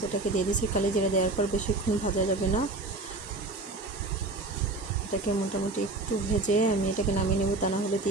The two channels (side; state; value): left; quieter; 3.1 dB